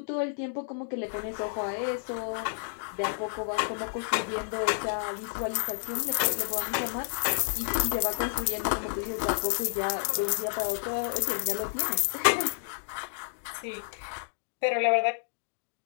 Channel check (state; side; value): silent; right; digital silence